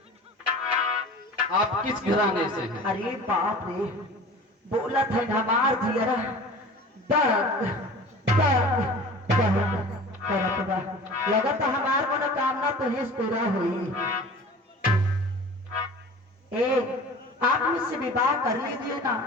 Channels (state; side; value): normal; both; correlation 0.40